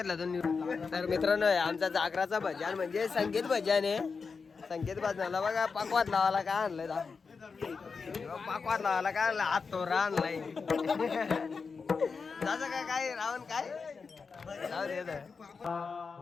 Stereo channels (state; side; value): quieter; right; 5.0 dB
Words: दोन तर मित्रांनो आमचा जागराचा भजन म्हणजे संगीत भजन आहे संगीत भजनाला बघा पाकवात लावायला काय आणलंय पाकवात लावायला काय आणलं हात तोरा आणलाय त्याचं काय रावण काय